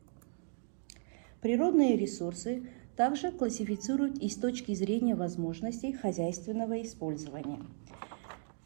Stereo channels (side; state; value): left; silent; 54 dB below the other